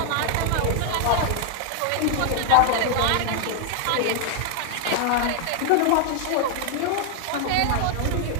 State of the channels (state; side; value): different; both; correlation 0.00